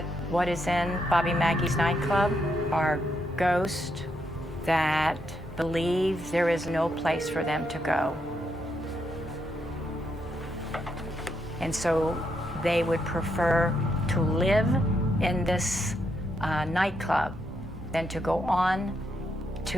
what is in Bobby Mackey's nightclub are ghosts that believe there is no place for them to go. And so they would prefer to live in this nightclub than to go on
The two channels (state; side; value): normal; both; correlation 0.79